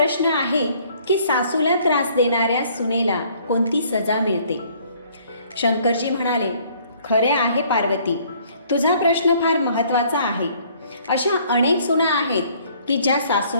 आहे की सासूला त्रास देणाऱ्या सुनेला कोणती सजा मिळते. शंकरजी म्हणाले, खरे आहे पार्वती, तुझा प्रश्न फार महत्त्वाचा आहे. अशा अनेक सुना आहेत की ज्या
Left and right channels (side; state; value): both; inverted; correlation -0.60